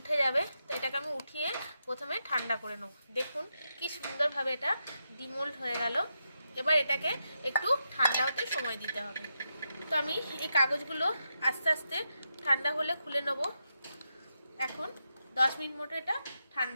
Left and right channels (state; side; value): inverted; both; correlation -0.86